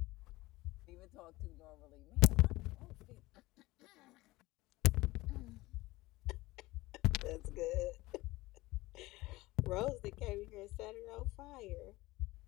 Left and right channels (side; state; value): right; quieter; 19.7 dB